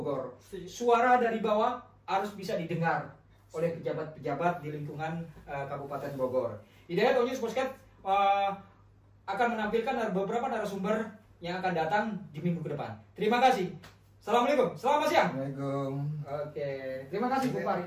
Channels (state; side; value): identical; both; correlation 1.00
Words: Suara dari bawah harus bisa didengar oleh pejabat-pejabat di lingkungan Kabupaten Bogor. Hidayat All News Podcast akan menampilkan beberapa narasumber yang akan datang di minggu ke depan. Terima kasih. Assalamualaikum. Selamat siang. Assalamualaikum. Oke. Terima kasih Bung Fahri.